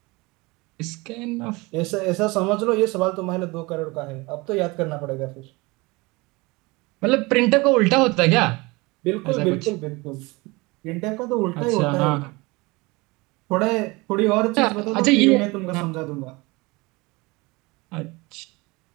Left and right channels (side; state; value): left; quieter; 24.2 dB